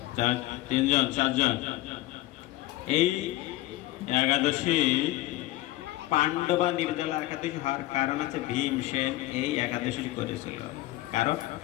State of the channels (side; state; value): right; quieter; 17.3 dB